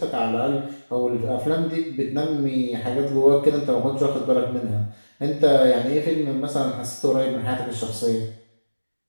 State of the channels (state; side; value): inverted; both; correlation -1.00